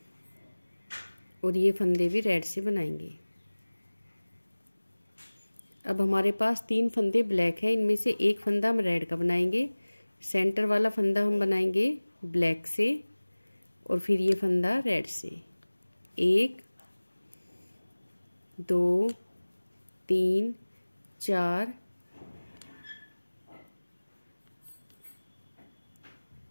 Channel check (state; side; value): inverted; both; correlation -1.00